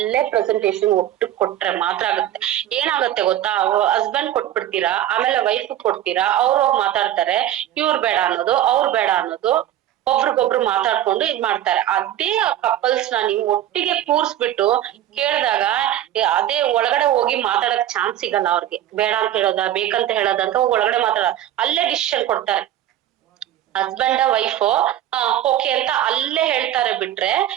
ಪ್ರೆಸೆಂಟೇಶನ್ ಒಟ್ಟು ಕೊಟ್ರೆ ಮಾತ್ರ ಆಗುತ್ತೆ. ಏನಾಗುತ್ತೆ ಗೊತ್ತಾ, ಹಸ್ಬೆಂಡ್ ಕೊಟ್ಬಿಡ್ತೀರಾ, ಆಮೇಲೆ ವೈಫ್ ಕೊಡ್ತೀರಾ, ಅವ್ರು ಹೋಗಿ ಮಾತಾಡ್ತಾರೆ, ಇವ್ರು ಬೇಡ ಅನ್ನೋದು, ಅವ್ರು ಬೇಡ ಅನ್ನೋದು, ಒಬ್ರಿಗೊಬ್ರು ಮಾತಾಡ್ಕೊಂಡು ಇದ್ ಮಾಡ್ತಾರೆ. ಅದೇ ಕಪಲ್ಸ್ ನ ನೀವು ಒಟ್ಟಿಗೆ ಕೂರ್ಸ್ಬಿಟ್ಟು ಕೇಳಿದಾಗ ಅದೇ ಒಳಗಡೆ ಹೋಗಿ ಮಾತಾಡಕ್ ಚಾನ್ಸ್ ಸಿಗಲ್ಲ ಅವ್ರಿಗೆ. ಬೇಡ ಅಂತ ಹೇಳೋದ, ಬೇಕಂತ ಹೇಳೋದಂತ ಒಳಗಡೆ ಮಾತಾಡ, ಅಲ್ಲೇ ಡಿಸಿಷನ್ ಕೊಡ್ತಾರೆ. ಹಸ್ಬೆಂಡ್ ವೈಫ್ ಓಕೆ ಅಂತ ಅಲ್ಲೇ ಹೇಳ್ತಾರೆ ಬಿಟ್ರೆ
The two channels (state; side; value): quieter; left; 12.2 dB